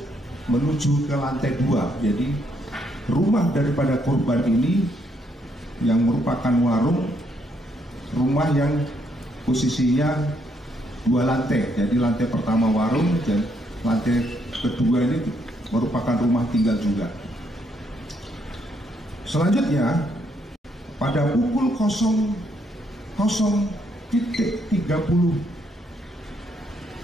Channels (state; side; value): normal; both; correlation 0.73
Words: menuju ke lantai 2. Jadi rumah daripada korban ini yang merupakan warung, rumah yang posisinya 2 lantai. Jadi lantai pertama warung dan lantai kedua ini merupakan rumah tinggal juga. Selanjutnya, pada pukul 00.30